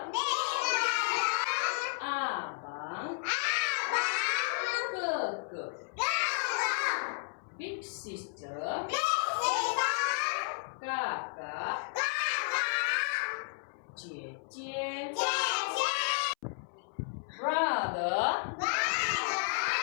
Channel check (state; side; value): silent; right; 56 dB below the other